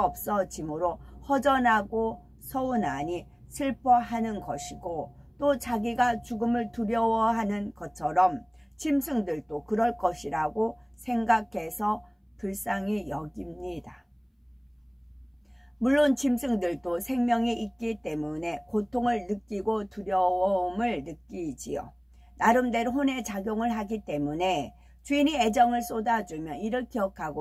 없어지므로 허전하고 서운하니 슬퍼하는 것이고 또 자기가 죽음을 두려워하는 것처럼 짐승들도 그럴 것이라고 생각해서 불쌍히 여깁니다. 물론 짐승들도 생명이 있기 때문에 고통을 느끼고 두려움을 느끼지요. 나름대로 혼의 작용을 하기 때문에 주인이 애정을 쏟아주면 이를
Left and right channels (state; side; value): identical; both; correlation 1.00